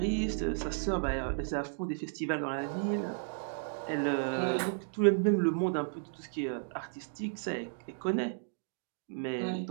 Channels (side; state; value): left; silent; digital silence